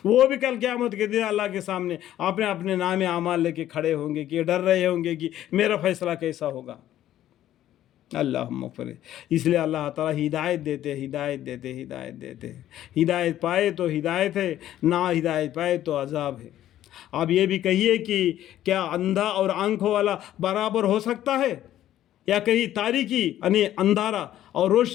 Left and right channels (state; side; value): quieter; right; 12.5 dB